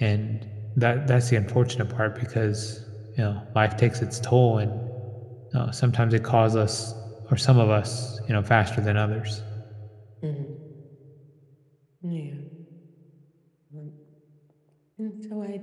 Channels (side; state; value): both; identical; correlation 1.00